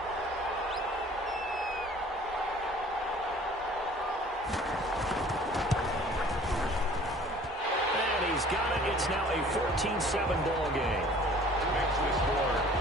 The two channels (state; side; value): normal; both; correlation 0.51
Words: And he's got it. It's now a 14-7 ball game. Makes the score